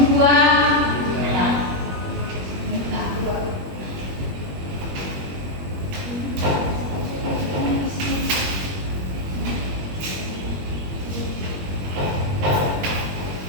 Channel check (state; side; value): late; left; 21 ms